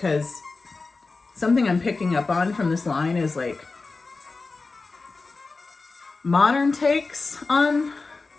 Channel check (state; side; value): quieter; right; 3.9 dB